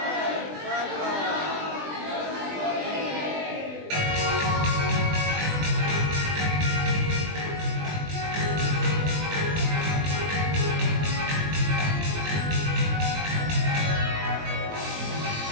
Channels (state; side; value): late; left; 20 ms